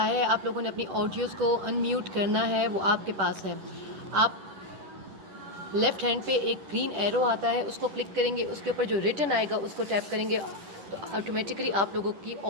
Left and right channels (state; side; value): late; left; 10 ms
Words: ہے، آپ لوگوں نے اپنی آڈیوز کو ان میوٹ کرنا ہے، وہ آپ کے پاس ہے. آپ لیفٹ ہینڈ پہ ایک گرین ایرو آتا ہے، اس کو کلک کریں گے، اس کے اوپر جو ریٹن آئے گا اس کو ٹیپ کریں گے تو آٹومیٹکلی آپ لوگوں کی